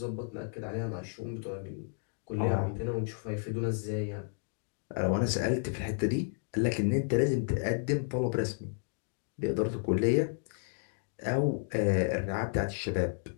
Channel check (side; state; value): right; silent; digital silence